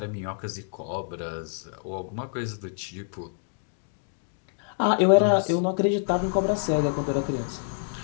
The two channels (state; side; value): silent; right; digital silence